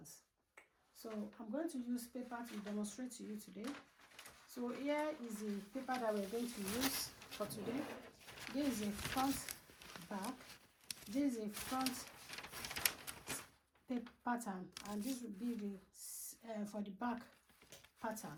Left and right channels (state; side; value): identical; both; correlation 1.00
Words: So I'm going to use paper to demonstrate to you today. So here is the paper that we're going to use for today. This is a front back. This is a front pattern, and this will be the for the back pattern.